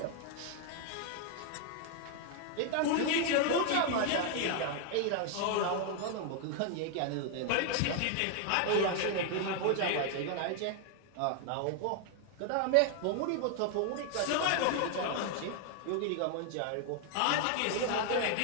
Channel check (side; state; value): both; different; correlation 0.00